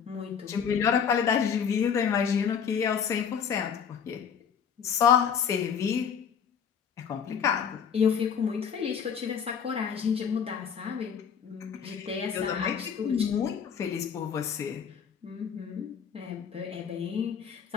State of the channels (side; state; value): right; quieter; 7.3 dB